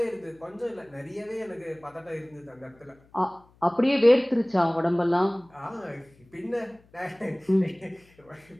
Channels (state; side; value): noise; left; hum, 30 dB below the sound